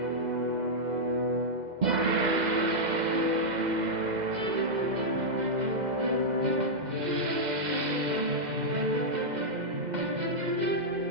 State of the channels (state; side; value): late; left; 2.0 ms